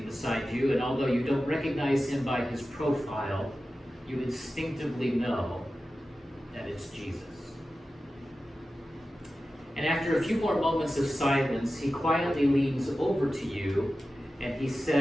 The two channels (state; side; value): normal; both; correlation 0.94